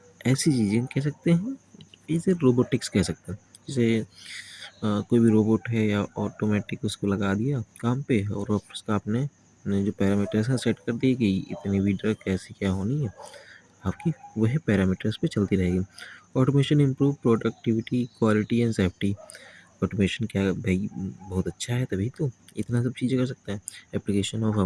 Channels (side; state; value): both; identical; correlation 1.00